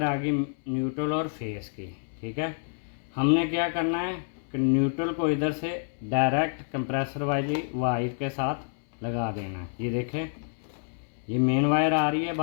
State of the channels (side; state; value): right; silent; 59 dB below the other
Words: आ गई न्यूट्रल और फेस की। ठीक है, हमने क्या करना है कि न्यूट्रल को इधर से डायरेक्ट कंप्रेसर वाली वायर के साथ लगा देना है। ये देखें, ये मेन वायर आ रही है